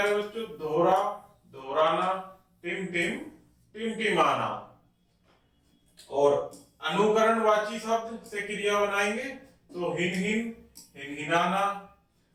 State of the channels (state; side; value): identical; both; correlation 1.00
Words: बच्चों दोहरा दोहराना। टिम टिमटिमाना। और अनुकरणवाची शब्द से क्रिया बनाएंगे तो हिनहिनाना।